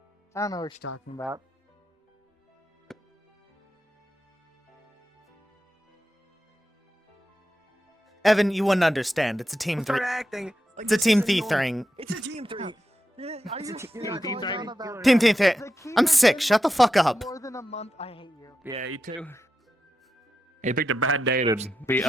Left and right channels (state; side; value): normal; both; correlation 0.88